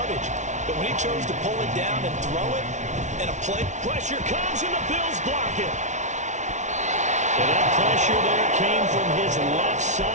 But when he chose to pull it down and throw it, and a play... Pressure comes and the Bills block it. And that pressure there came from his left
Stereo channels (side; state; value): left; late; 0.35 ms